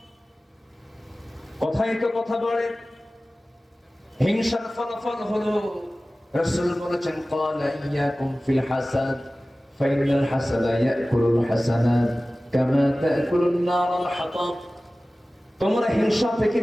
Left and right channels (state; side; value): normal; both; correlation 0.97